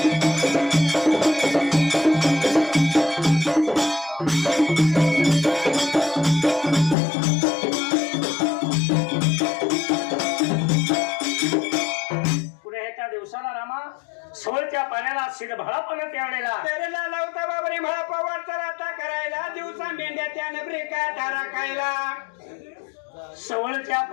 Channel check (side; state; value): right; drops out; at 7.0 s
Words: सोळच्या पाण्याला शिरभाळापण त्यावेळेला तेरेला लावता बाबरी मला पवार चलाता करायला दिवसा मेंढ्या त्याने ब्रेका धारा खायला सवळच्या